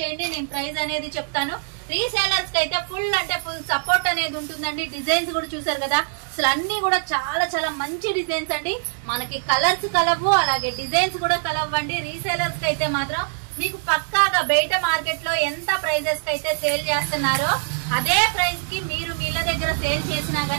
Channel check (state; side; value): silent; left; digital silence